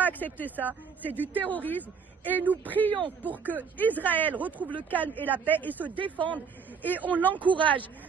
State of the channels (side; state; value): left; quieter; 6.1 dB